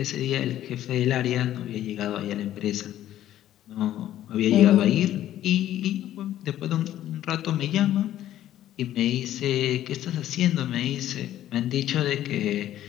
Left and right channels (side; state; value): right; quieter; 12.6 dB